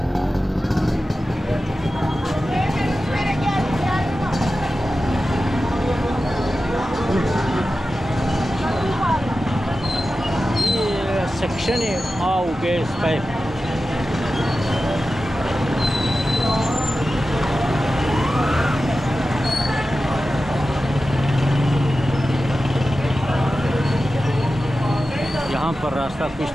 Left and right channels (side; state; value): both; normal; correlation 0.93